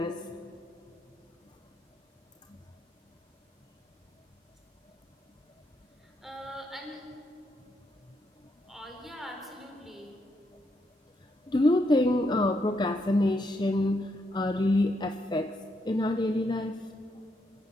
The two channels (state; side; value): normal; both; correlation 0.78